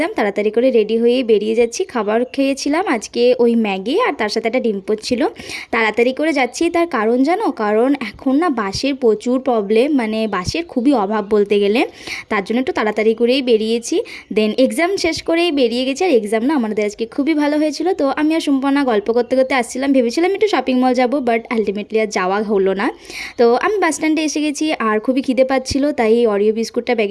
তাড়াতাড়ি করে রেডি হয়ে বেরিয়ে যাচ্ছি। খাবার খেয়েছিলাম আজকে ওই ম্যাগি, আর তার সাথে একটা ডিম পোচ ছিল। তাড়াতাড়ি করে যাচ্ছি, তার কারণ জানো? কারণ এখন না বাসের প্রচুর প্রবলেম, মানে বাসের খুবই অভাব বলতে গেলে। তার জন্য একটু তাড়াতাড়ি করেই বেরিয়েছি। দেন এক্সাম শেষ করেই বেরিয়ে গেছি। আর এক্সাম না আমাদের আজকে খুবই ভালো হয়েছিল। তো আমি আর সম্পূর্ণ গল্প করতে করতে আসছিলাম, ভেবেছিলাম একটু শপিং মল যাবো, বাট আলটিমেটলি আর যাওয়া হলো না। তো আমি বাস স্ট্যান্ডে এসে গেছি, আর খুবই খিদে পাচ্ছিলো, তাই অরিও বিস্কুটটা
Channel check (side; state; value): both; identical; correlation 1.00